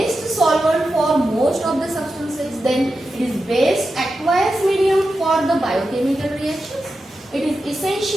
solvent for most of the substances. Then it is best aqueous medium for the biochemical reactions. It is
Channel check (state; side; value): normal; both; correlation 0.90